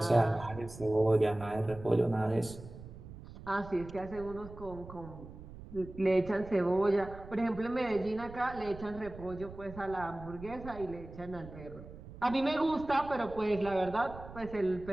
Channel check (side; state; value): right; noise; rumble, 15 dB below the sound